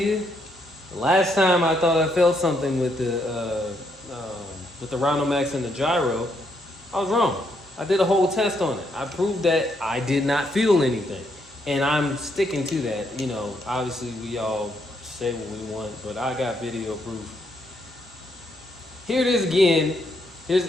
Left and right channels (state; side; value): normal; both; correlation 0.75